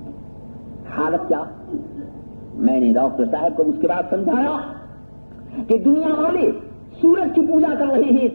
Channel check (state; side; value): inverted; both; correlation -1.00